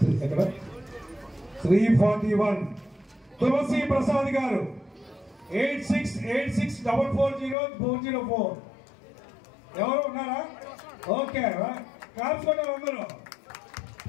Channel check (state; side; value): drops out; right; at 7.6 s